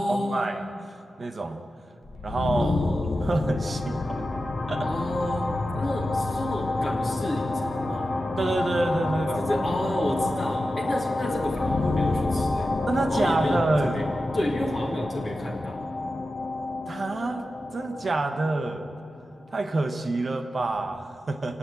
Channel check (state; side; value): normal; both; correlation 0.92